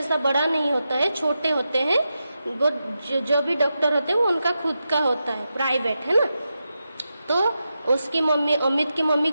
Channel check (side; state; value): both; inverted; correlation -0.89